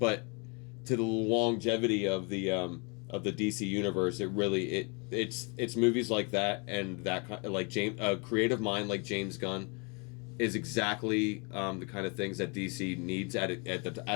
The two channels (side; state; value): right; quieter; 32.7 dB